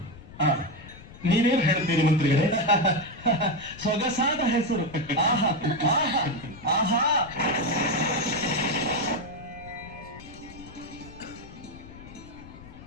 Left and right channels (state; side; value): noise; left; rumble, 18 dB below the sound